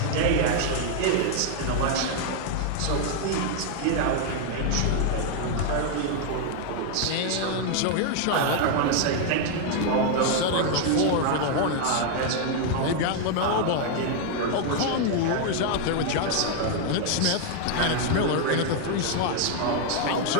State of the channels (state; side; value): different; both; correlation 0.00